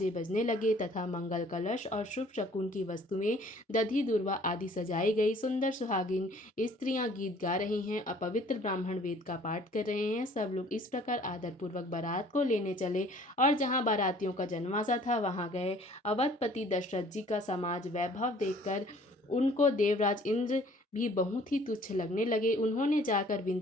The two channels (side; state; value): both; normal; correlation 0.54